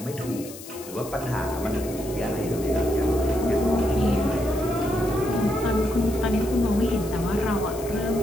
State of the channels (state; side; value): noise; left; hiss, 15 dB below the sound